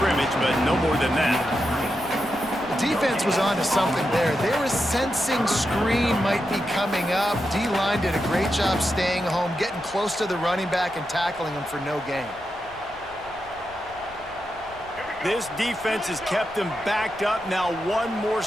but no more than that. Defense was on to something there. They were sensing screen might be coming up. D-line did a great job staying home, getting close to the running back and tackling him for no gain. This defense has kept them backed up. Now one more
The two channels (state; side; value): noise; left; rumble, 23 dB below the sound